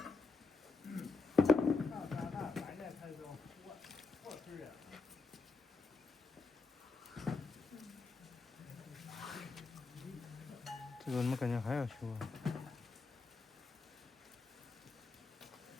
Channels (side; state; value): right; quieter; 3.9 dB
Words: 这个怎么感觉还要修啊？